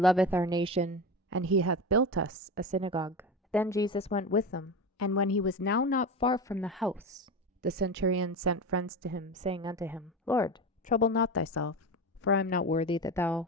our nation, and he hath built us a synagogue. Then Jesus went with them. And when he was now not far from the house, the centurion sent friends to him, saying unto him, Lord, trouble not thyself, for I am not worthy that thou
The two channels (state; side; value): normal; both; correlation 0.23